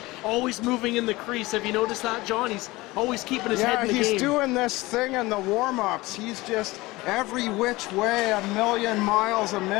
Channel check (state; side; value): quieter; right; 20.7 dB